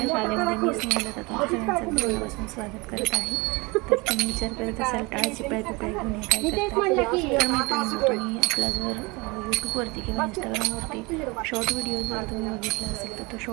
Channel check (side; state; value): left; quieter; 26.1 dB